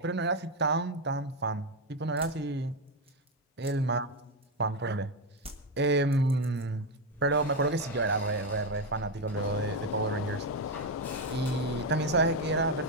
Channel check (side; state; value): both; normal; correlation 0.08